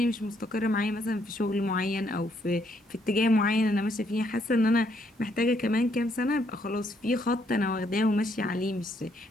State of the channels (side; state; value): both; normal; correlation 0.71